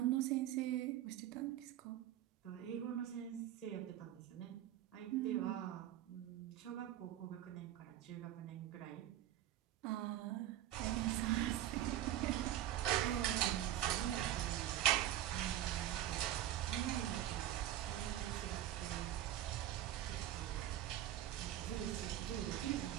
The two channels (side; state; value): left; quieter; 12.5 dB